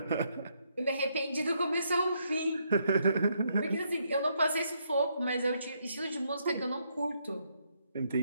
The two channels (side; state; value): both; inverted; correlation -0.75